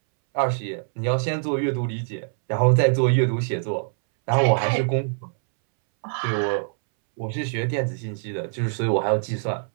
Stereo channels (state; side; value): silent; left; 63 dB below the other